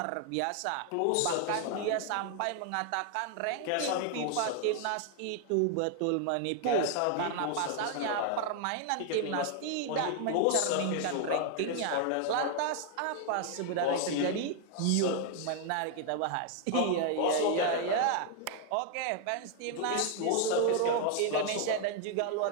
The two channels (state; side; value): different; both; correlation 0.00